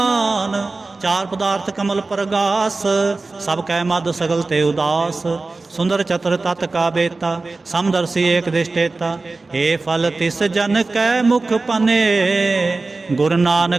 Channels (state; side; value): quieter; left; 3.6 dB